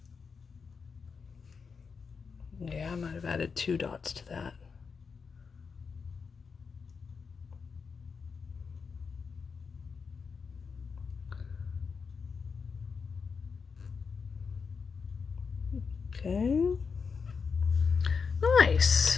Yeah, I might have added 2 dots to that. Okay.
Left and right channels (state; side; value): quieter; right; 5.5 dB